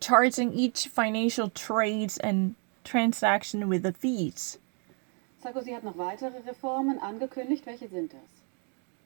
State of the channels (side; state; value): left; quieter; 39.5 dB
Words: each financial trades and transaction with the fees. Sarkozy hat noch weitere Reformen angekündigt. Welche sind das?